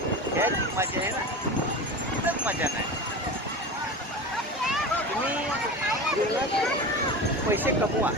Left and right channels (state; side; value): normal; both; correlation 0.28